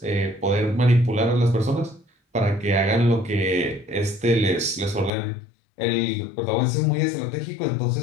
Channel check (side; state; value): right; drops out; at 5.1 s